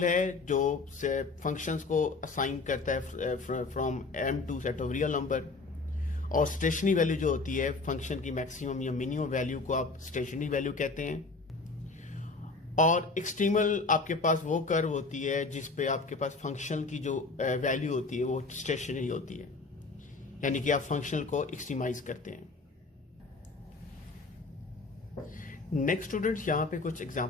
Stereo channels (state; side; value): quieter; right; 3.8 dB